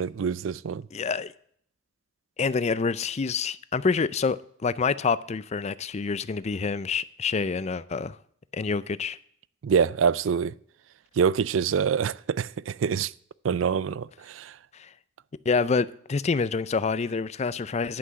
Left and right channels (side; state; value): both; normal; correlation 0.07